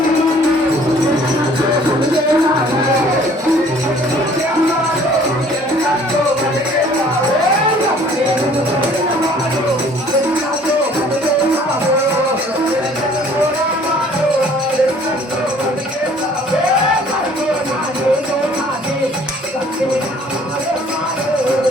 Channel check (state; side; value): normal; both; correlation 0.55